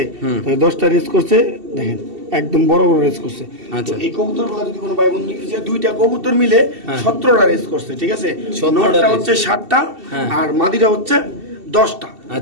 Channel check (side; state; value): left; late; 2.7 ms